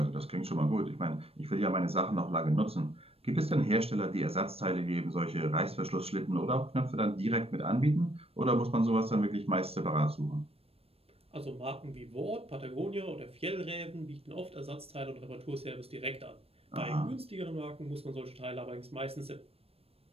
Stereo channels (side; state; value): left; late; 0.28 ms